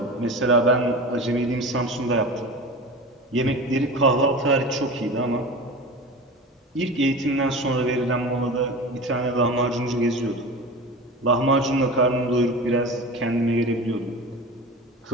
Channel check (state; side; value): normal; both; correlation 0.32